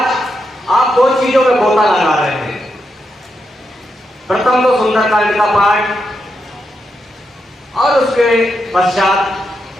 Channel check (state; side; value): normal; both; correlation 0.84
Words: आप दो चीजों में गोता लगा रहे हैं। प्रथम तो सुंदरकांड का पाठ और उसके पश्चात